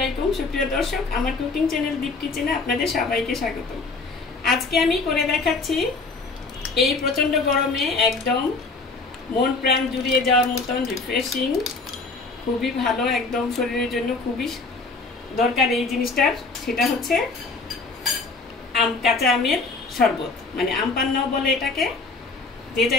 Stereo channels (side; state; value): right; quieter; 3.9 dB